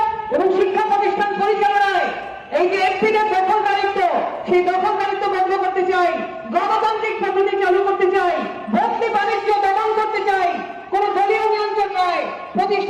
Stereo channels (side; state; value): both; identical; correlation 1.00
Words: এবং শিক্ষা প্রতিষ্ঠান পরিচালনায় এই যে এফপিদের দখলদারিত্ব, সেই দখলদারিত্ব বন্ধ করতে চাই, গণতান্ত্রিক পদ্ধতি চালু করতে চাই, ভর্তি বাণিজ্য দমন করতে চাই, কোন দলীয় নিয়ন্ত্রণ নয়,